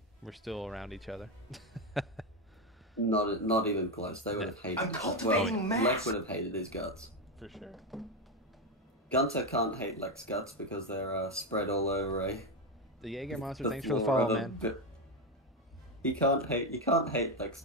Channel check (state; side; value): normal; both; correlation 0.10